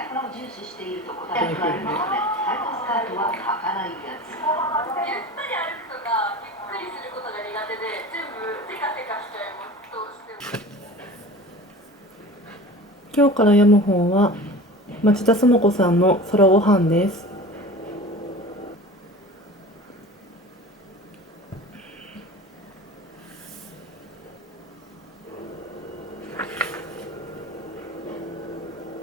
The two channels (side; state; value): both; normal; correlation 0.37